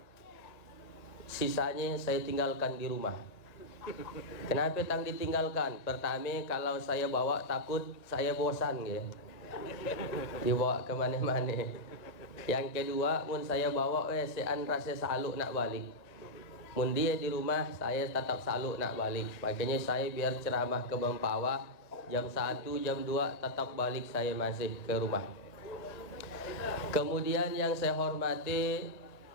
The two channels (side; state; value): right; late; 1.8 ms